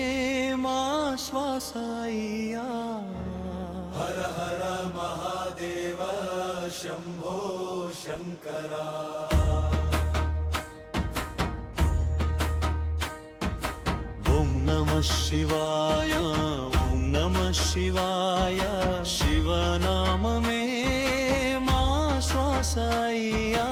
మా శ్వాసయ్యా హర హర మహాదేవ శంభో శంకరా ఓం నమః శివాయ ఓం నమః శివాయ శివనామమే మా శ్వాసయ్యా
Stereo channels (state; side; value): identical; both; correlation 1.00